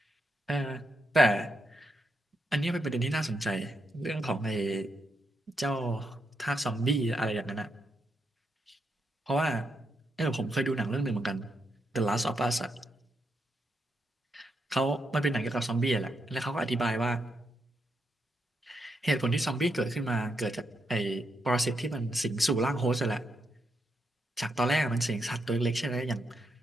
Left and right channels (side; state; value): both; normal; correlation 0.81